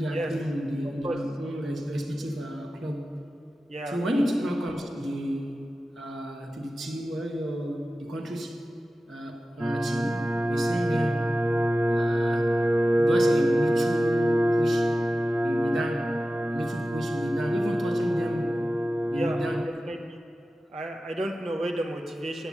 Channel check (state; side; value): normal; both; correlation 0.95